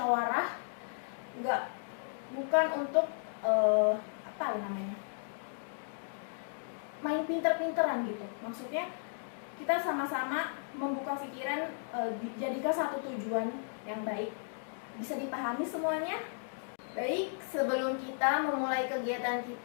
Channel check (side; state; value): right; silent; digital silence